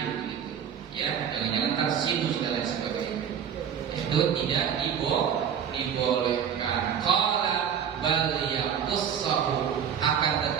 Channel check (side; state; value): left; quieter; 8.2 dB